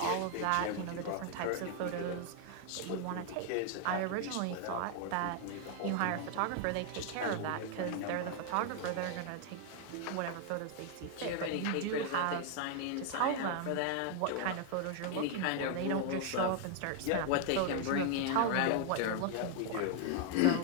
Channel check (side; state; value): both; different; correlation 0.00